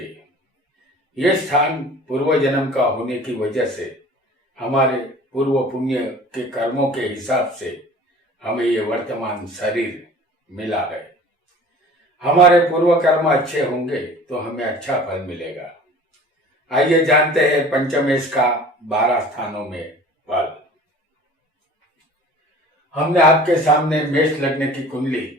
यह स्थान पूर्व जन्म का होने की वजह से हमारे पूर्व पुण्य के कर्मों के हिसाब से हमें ये वर्तमान शरीर मिला है। हमारे पूर्व कर्म अच्छे होंगे तो हमें अच्छा फल मिलेगा। आइए जानते हैं पंचमेश का 12 स्थानों में फल। हमने आपके सामने मेष लग्न की कुंडली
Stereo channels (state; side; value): normal; both; correlation 0.45